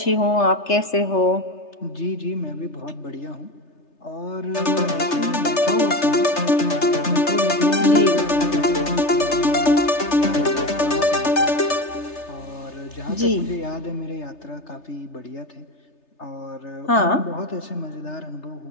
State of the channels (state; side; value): late; right; 3.3 ms